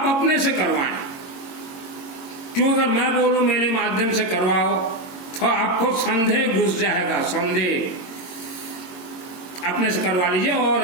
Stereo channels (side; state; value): right; late; 22 ms